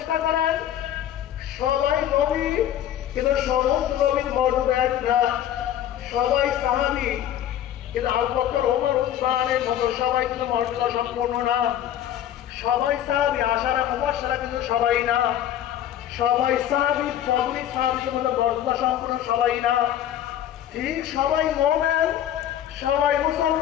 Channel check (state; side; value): quieter; right; 11.2 dB